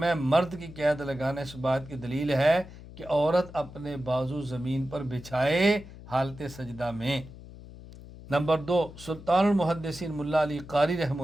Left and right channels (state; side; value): noise; left; hum, 16 dB below the sound